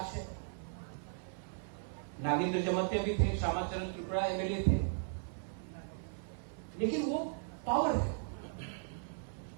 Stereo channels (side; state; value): left; silent; 53 dB below the other